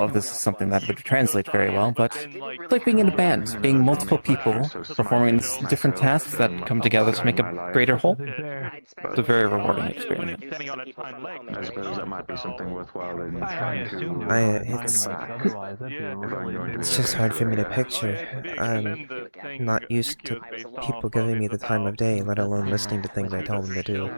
if this is something that would translate very well, but it's like being in a band, being multiple people performing different tasks that come together to make a greater whole. It's a very rewarding experience. I suppose that might be something worthwhile in trying to. It's just hard for me to picture. I'm not used to people giving me the time of day, let alone listening to things I tell them to do.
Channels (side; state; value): both; inverted; correlation -1.00